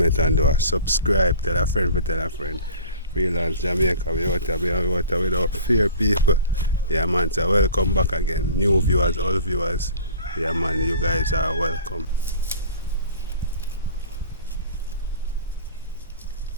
and do a subscribe. Tell a friend, tell a friend. Freelance Jamaica, we out without fear, people. Yeah, man, so welcome back again. New viewers, all viewers. Yeah, man, you guys are welcome.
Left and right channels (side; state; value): both; inverted; correlation -0.45